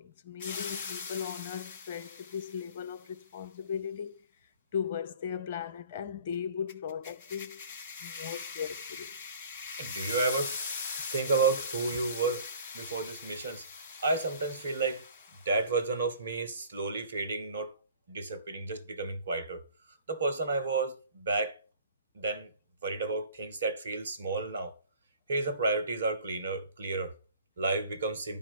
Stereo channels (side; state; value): both; inverted; correlation -0.49